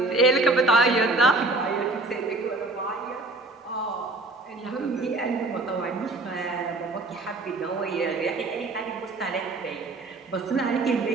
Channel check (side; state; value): left; quieter; 3.1 dB